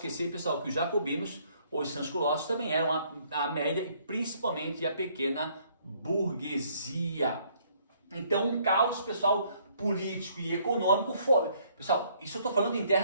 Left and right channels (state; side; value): inverted; both; correlation -0.65